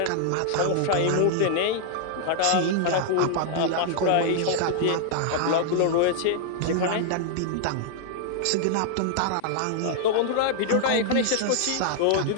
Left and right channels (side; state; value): both; different; correlation -0.01